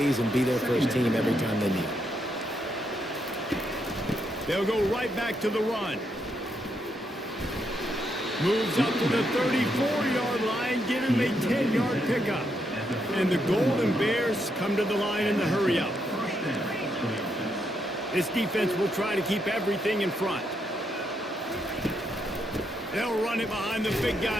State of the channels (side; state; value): both; normal; correlation 0.79